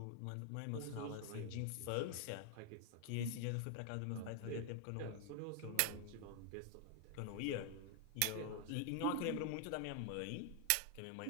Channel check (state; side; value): different; both; correlation 0.00